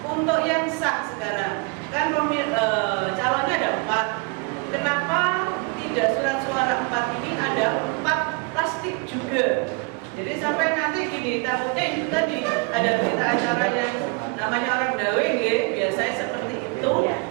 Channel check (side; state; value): left; quieter; 30.6 dB